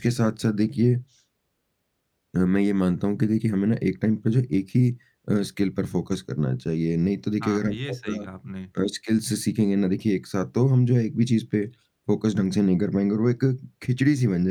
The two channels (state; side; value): identical; both; correlation 1.00